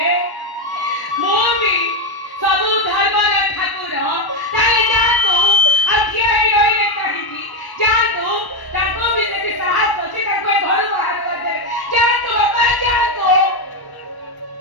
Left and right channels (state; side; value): late; right; 1.0 ms